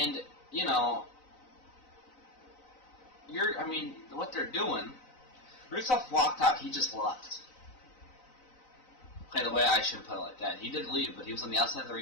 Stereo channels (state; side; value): late; right; 3.9 ms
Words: what they're doing, Rusev walked out, he just left. Okay, the way I shouldn't put it like that. He did leave, but he was on the outside of the